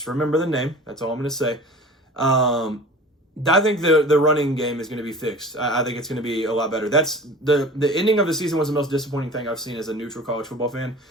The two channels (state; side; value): normal; both; correlation 0.40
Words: remember the name. That's all I'm going to say. I think the running game is going to be fixed. I think it's going to be a lot better. That's the ending of the season was the most disappointing thing I've seen as a neutral college football fan.